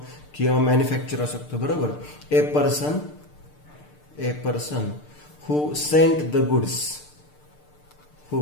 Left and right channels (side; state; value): right; late; 6.7 ms